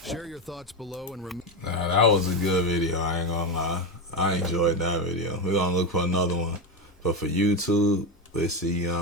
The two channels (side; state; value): both; normal; correlation 0.15